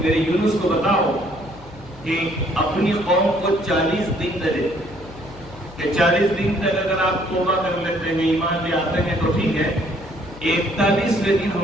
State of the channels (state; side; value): noise; left; hum, 20 dB below the sound